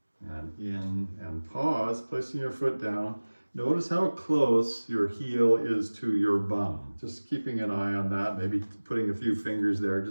and in and pause, placing your foot down. Notice how close your heel is to your bum. Just keeping an eye on that, maybe putting a few fingers there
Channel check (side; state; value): both; inverted; correlation -1.00